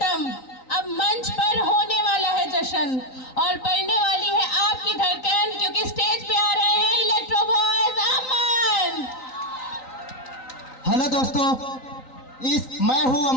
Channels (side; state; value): right; late; 3.9 ms